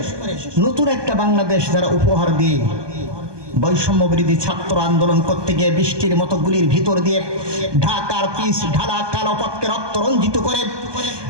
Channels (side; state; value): left; late; 1.2 ms